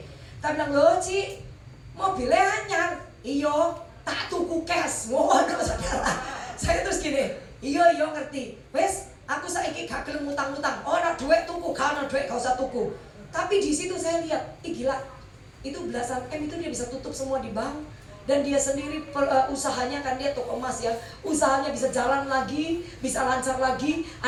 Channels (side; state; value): both; identical; correlation 1.00